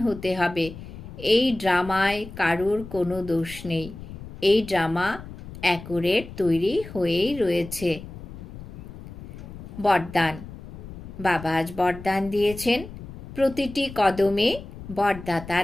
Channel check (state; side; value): noise; left; rumble, 13 dB below the sound